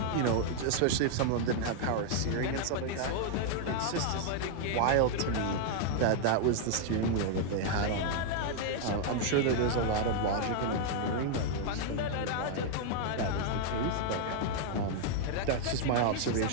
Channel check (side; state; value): both; different; correlation 0.00